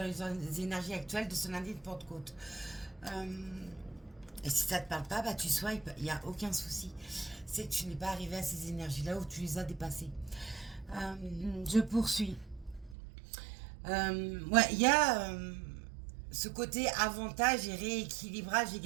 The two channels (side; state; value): left; drops out; at 13.0 s